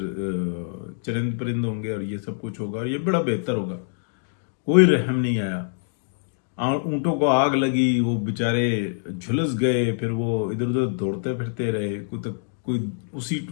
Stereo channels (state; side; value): silent; right; digital silence